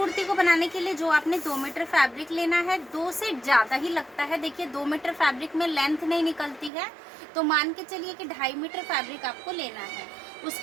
को बनाने के लिए जो आपने 2 मीटर फैब्रिक लेना है, 2 से ज़्यादा ही लगता है। देखिए 2 मीटर फैब्रिक में लेंथ नहीं निकलती है, तो मान के चलिए कि 2.5 मीटर फैब्रिक आपको लेना है।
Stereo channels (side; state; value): left; drops out; at 6.7 s